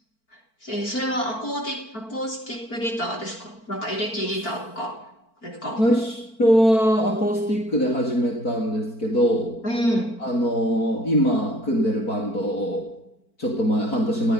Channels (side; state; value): right; late; 4.5 ms